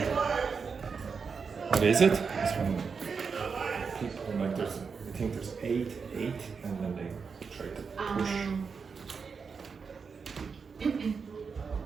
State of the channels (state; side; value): quieter; left; 5.5 dB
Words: What is it? It's when people like there's, I think there's eight, and then they try to push.